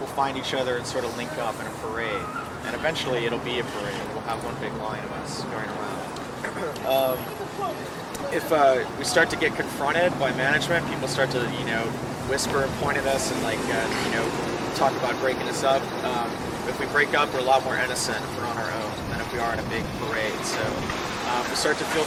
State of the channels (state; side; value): identical; both; correlation 1.00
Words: find each other and sort of link up in a parade. And eventually it'll be a parade. We'll have one big line of us going around. If we start to get confronted by management, people start to, whisper and point at us and talk about breaking us up. If we break up, we're a lot more innocent if we're on our own than if we are in a big parade. So if we start to feel